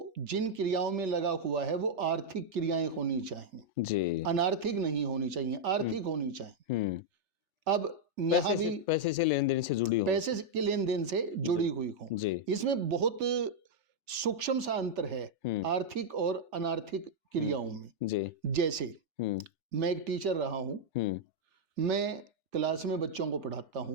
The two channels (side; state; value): left; late; 3.4 ms